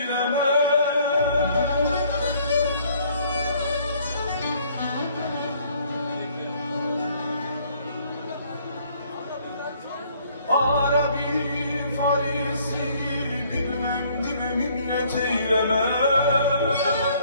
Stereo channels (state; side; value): inverted; both; correlation -0.61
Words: Arabi Farisi bilmem dime minnet eyleme.